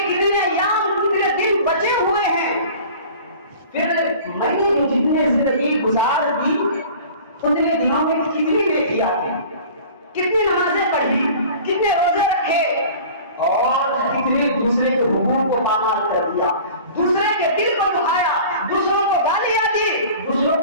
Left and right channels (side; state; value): both; inverted; correlation -0.43